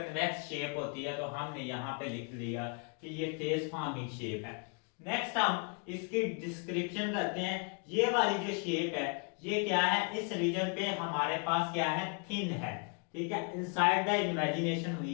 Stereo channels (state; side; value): quieter; right; 37.7 dB